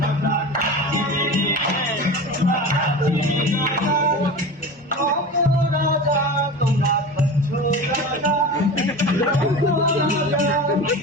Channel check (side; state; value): both; normal; correlation 0.31